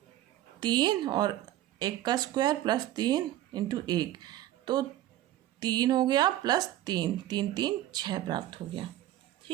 3 और 1 का स्क्वायर + 3 × 1, तो 3 हो गया + 3 3 3 6 प्राप्त हो गया,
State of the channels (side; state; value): left; quieter; 13.9 dB